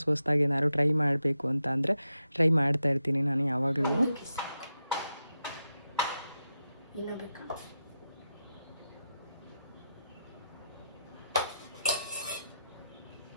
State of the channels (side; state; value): both; inverted; correlation -0.87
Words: ಏನಾದ್ರು ಟ್ರೈ ಮಾಡಬೇಕು ಅಂತ ಅಂದರೆ ಟ್ರೈ ಮಾಡ್ತಾ ಇರ್ತೀನಿ ನಾನು ಯಾವಾಗಲೂ.